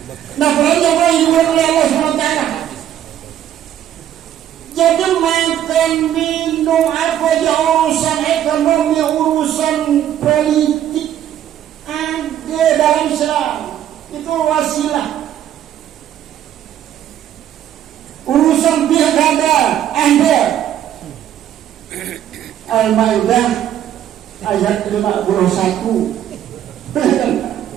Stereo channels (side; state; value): left; quieter; 11.0 dB